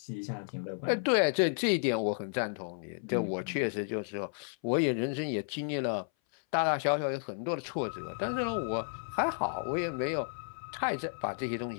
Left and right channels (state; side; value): silent; right; 56 dB below the other